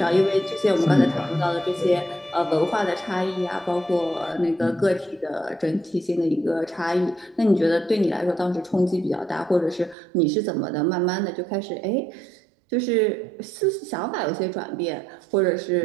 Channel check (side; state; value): left; drops out; at 10.0 s